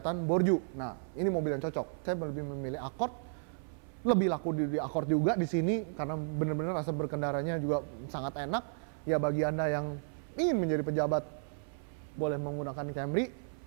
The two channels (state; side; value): silent; left; 55 dB below the other